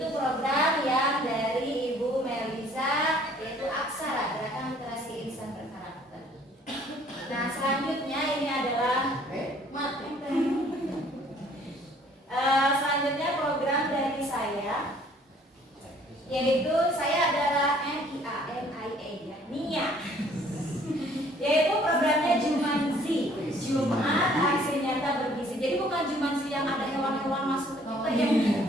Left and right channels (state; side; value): normal; both; correlation 0.58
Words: program yang dari Ibu Melisa, yaitu Aksara, Gerakan Literasi Insan Berkarakter. Nah, selanjutnya ini adalah selanjutnya program dari saya, yaitu saya adalah NIA, yaitu programnya Jumanzi, Jumat Aksi Nyata Bergizi. Jadi bukan Jumanzi yang ada hewan-hewan masuk ke kita ya.